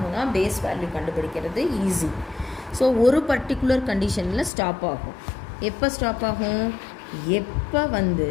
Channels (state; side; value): drops out; right; at 4.5 s